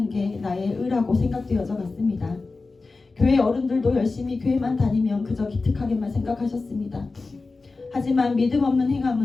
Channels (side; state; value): right; quieter; 3.8 dB